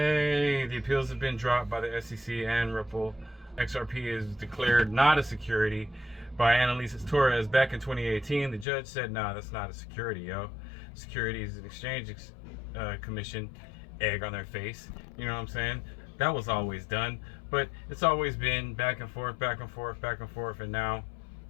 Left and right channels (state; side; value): drops out; right; at 8.7 s